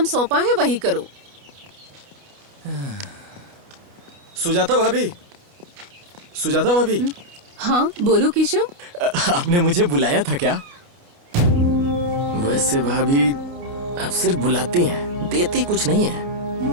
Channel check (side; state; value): left; late; 29 ms